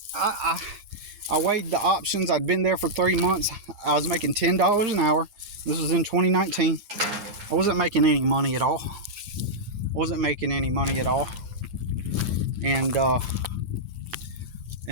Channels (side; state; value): left; late; 9.8 ms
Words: I weighed the options. I'd been there for 3 months. I was making $10 an hour. This was in 2019. I wasn't making any money at all.